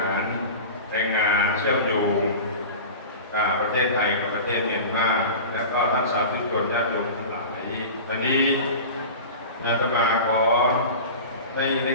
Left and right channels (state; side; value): inverted; both; correlation -0.33